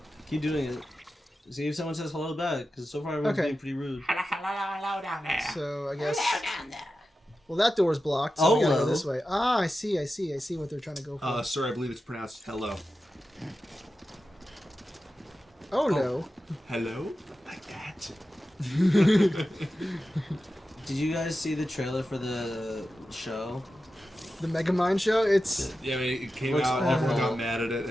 Keep doing it. See if someone says hello back, because so far everyone's Okay. being pretty rude. Hello down there. So I guess. down there. Well, that door's blocked. So we gotta go Hello. this way. Ah, I see what they're trying to go for. Sir, I believe it's pronounced hello. Oh no. Hello? Like that? Did you guys see the trailer for the show? The Megamind show. It's Yeah, I mean, it came Looks out, everyone awful. got mad at it,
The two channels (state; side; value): normal; both; correlation 0.92